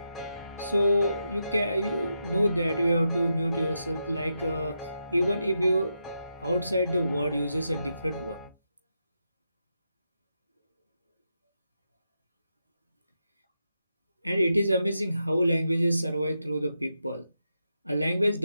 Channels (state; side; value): inverted; both; correlation -0.85